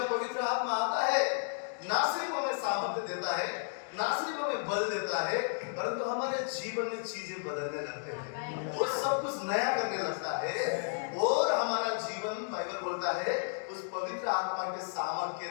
पवित्र आत्मा आता है ना सिर्फ हमें सामर्थ्य देता है, ना सिर्फ हमें बल देता है, परंतु हमारे जीवन में चीजें बदलने लगते हैं, वो सब कुछ नया करने लगता है और हमारा जीवन बाइबल बोलता है उस पवित्र आत्मा के सामर्थ्य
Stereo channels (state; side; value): silent; right; digital silence